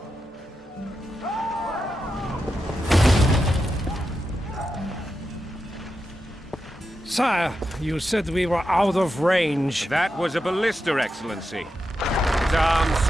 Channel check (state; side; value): normal; both; correlation 0.88